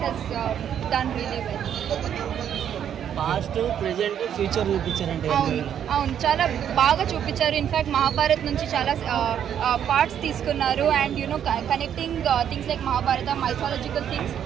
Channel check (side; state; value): left; quieter; 9.3 dB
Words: has done really well. Past present future చూపించారంటే అవును చాలా బాగా చూపించారు. In fact Mahabharat నుంచి చాలా parts తీసుకున్నారు and you know connecting things like Mahabharata mythological things